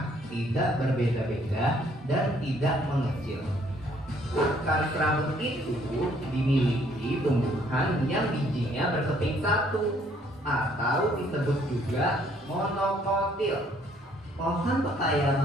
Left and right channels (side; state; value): both; normal; correlation 0.64